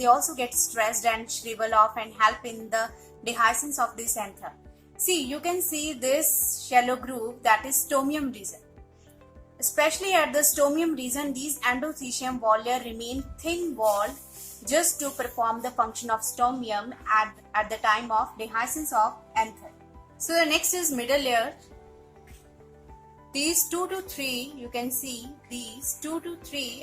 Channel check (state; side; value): identical; both; correlation 1.00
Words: also get stressed and shrivel off and help in the dehiscence of this anther. See, you can see this shallow groove, that is stomium region. Especially at the stomium region, these endothecium wall layer remain thin walled just to perform the function of stomium at the time of dehiscence of anther. So the next is middle layer. These 2 to 3, you can see these 2 to